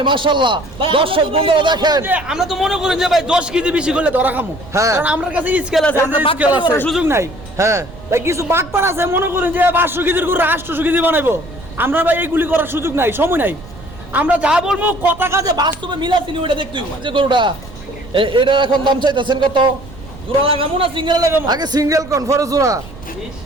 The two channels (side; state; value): right; noise; rumble, 17 dB below the sound